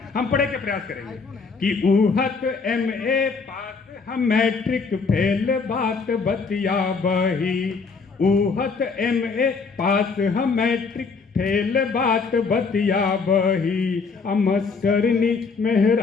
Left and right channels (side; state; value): right; quieter; 4.8 dB